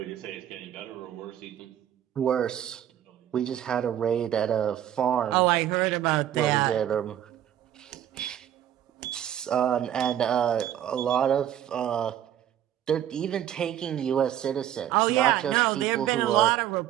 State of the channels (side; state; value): left; quieter; 11.1 dB